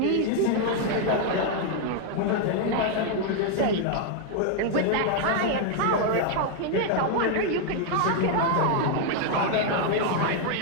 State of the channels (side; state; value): both; different; correlation 0.00